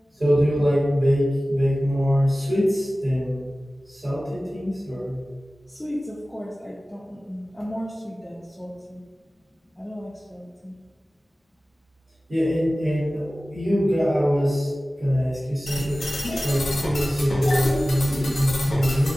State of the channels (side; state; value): both; normal; correlation 0.97